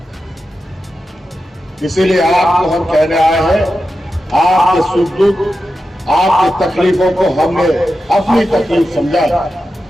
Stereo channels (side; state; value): both; normal; correlation 0.91